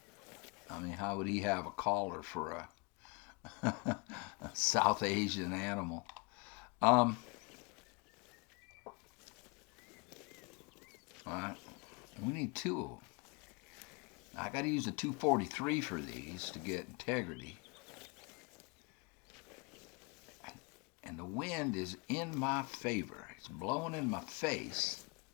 I mean, how would he have a collar for a South Asian animal? All right, we need two of them. I got to use a 243 for these to get integrity. And the wind is in my favor. It's blowing in my face.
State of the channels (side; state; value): right; quieter; 30.3 dB